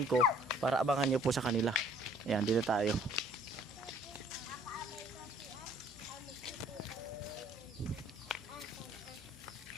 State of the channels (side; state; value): left; noise; hum, 24 dB below the sound